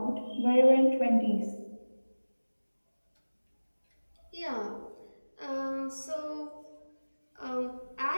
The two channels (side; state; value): both; inverted; correlation -1.00